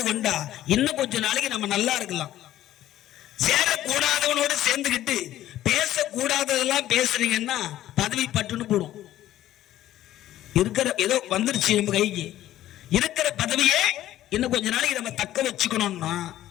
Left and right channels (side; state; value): right; quieter; 13.4 dB